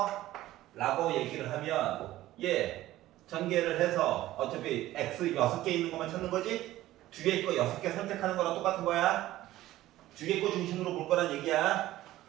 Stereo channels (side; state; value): left; quieter; 15.3 dB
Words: 라고 얘기를 하면 전개를 해서 어차피 x 6개 있는 것만 찾는 거지 뒤에 거 6개 선택하는 거랑 똑같은 거야. 뒤에 거 중심으로 볼 거란 얘기야.